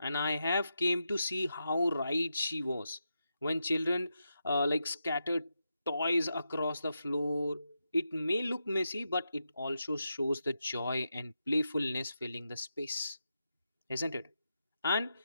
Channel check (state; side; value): inverted; both; correlation -0.87